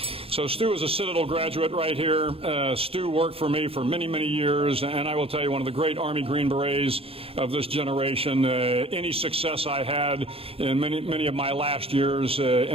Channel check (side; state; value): left; late; 0.28 ms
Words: So Stu is a Citadel graduate right here. Stu worked for me for many, many years, and I will tell you, one of the great Army Green Berets of this generation. Any success I had in many of my last years